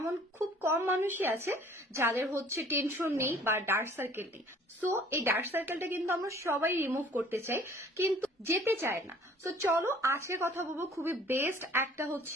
খুব কম মানুষই আছে যাদের টেনশন নেই বা ডার্ক সার্কেল নেই। সো এই ডার্ক সার্কেলটা কিন্তু আমরা সবাই রিমুভ করতে চাই, কিন্তু যেতে চায় না। সো চলো আজকে কথা বলবো খুবই বেস্ট একটা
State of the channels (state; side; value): normal; both; correlation 0.53